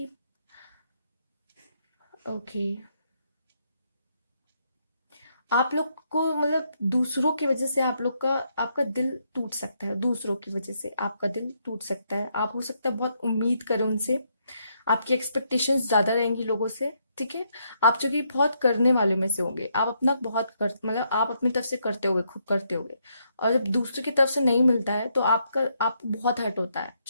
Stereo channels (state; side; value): inverted; both; correlation -0.76